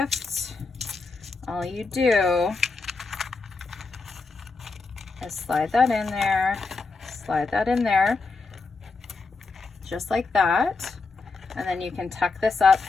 all you do is slide that in there, just like that, and then you can tuck this up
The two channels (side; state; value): right; quieter; 4.1 dB